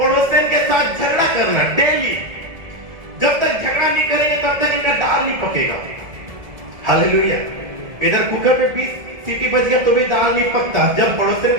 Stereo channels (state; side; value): late; left; 1.7 ms